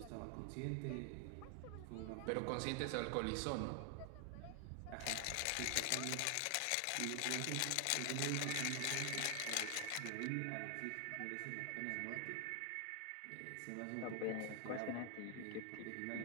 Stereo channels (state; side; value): different; both; correlation 0.00